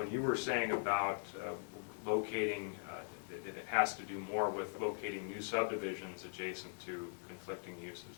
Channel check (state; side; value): silent; right; digital silence